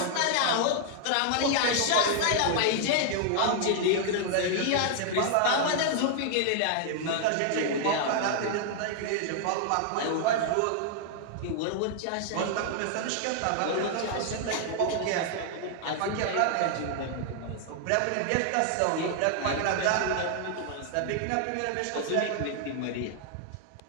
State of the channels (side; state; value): both; different; correlation 0.00